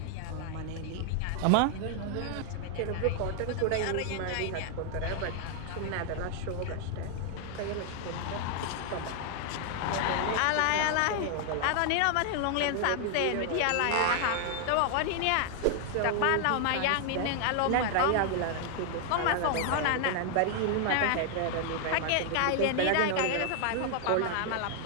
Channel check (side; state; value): both; different; correlation 0.00